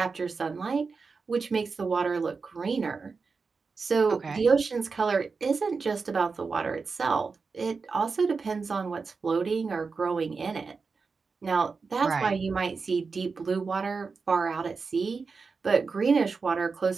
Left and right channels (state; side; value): quieter; left; 4.7 dB